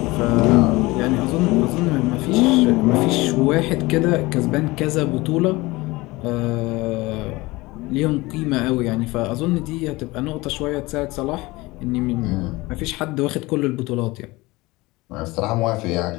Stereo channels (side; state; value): right; quieter; 21.6 dB